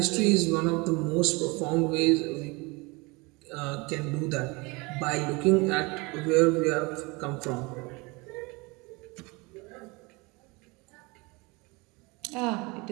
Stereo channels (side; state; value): left; quieter; 26.2 dB